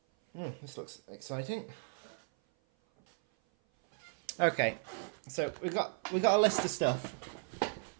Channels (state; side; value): silent; left; 54 dB below the other